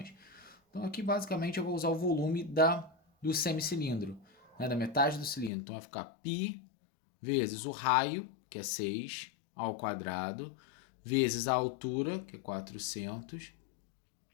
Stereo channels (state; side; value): drops out; right; at 5.5 s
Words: Então, aqui basicamente eu vou usar o volume do semicilindro, né, da metade do cilindro. Então, vai ficar π vezes o raio, que é 6, ao quadrado, vezes a altura, que é 400.